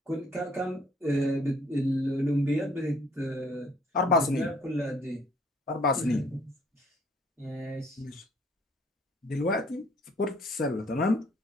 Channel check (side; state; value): both; normal; correlation 0.61